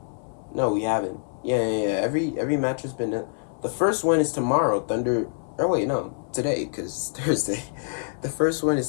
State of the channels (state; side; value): silent; right; digital silence